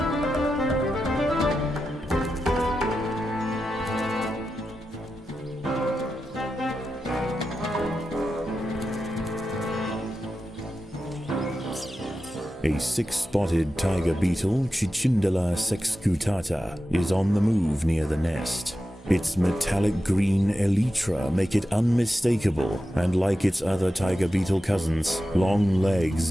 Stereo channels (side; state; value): both; normal; correlation 0.91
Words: A six-spotted tiger beetle, Cicindela sexcutata, is on the move near the nest. Its metallic green elytra make it unmistakable, and like its other tiger beetle cousins, long legs